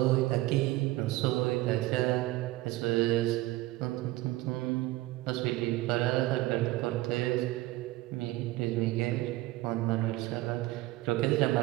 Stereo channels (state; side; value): quieter; left; 18.2 dB